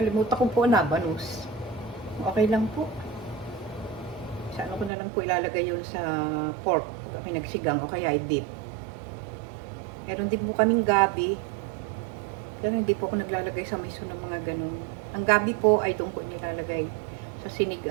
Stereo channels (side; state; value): left; drops out; at 4.9 s